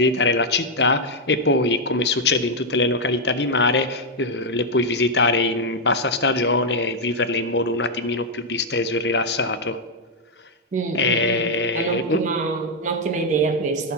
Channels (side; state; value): both; normal; correlation 0.00